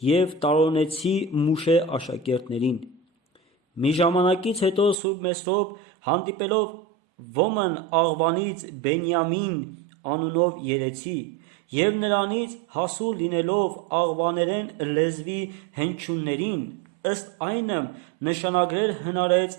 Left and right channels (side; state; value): left; drops out; at 5.0 s